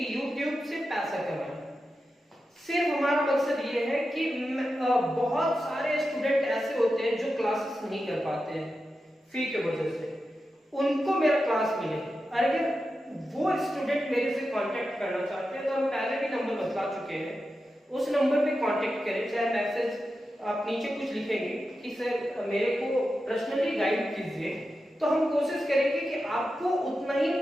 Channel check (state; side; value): normal; both; correlation 0.90